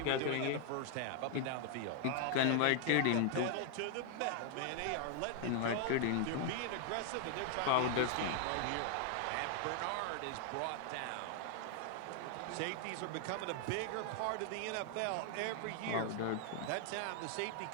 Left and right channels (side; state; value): both; different; correlation 0.00